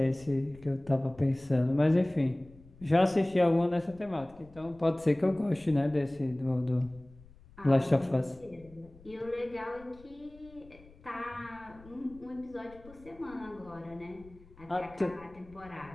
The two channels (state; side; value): noise; left; rumble, 23 dB below the sound